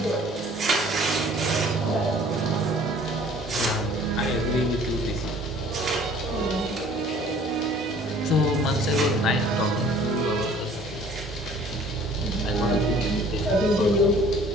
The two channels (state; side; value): normal; both; correlation 0.52